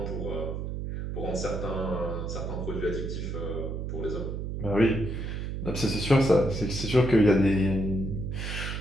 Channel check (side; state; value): right; noise; hum, 4 dB below the sound